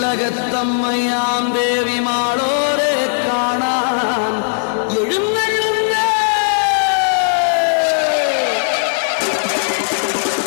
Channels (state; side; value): silent; right; 63 dB below the other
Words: ദേവി മാളോരെ കാണാൻ എഴുന്നള്ളുന്നേ.